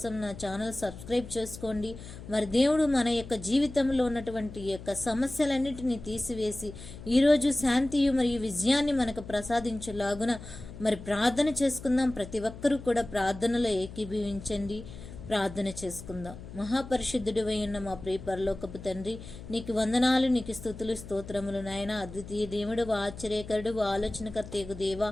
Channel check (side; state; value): left; noise; hum, 13 dB below the sound